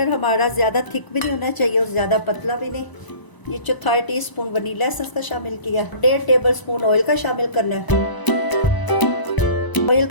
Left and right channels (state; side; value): late; right; 1.0 ms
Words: हमारा ज्यादा थिक भी नहीं होना चाहिए और ज्यादा पतला भी नहीं। ये 1/4 टीस्पून वनीला एसेंस का शामिल किया। 1.5 टेबलस्पून ऑयल का शामिल करना है। ऑयल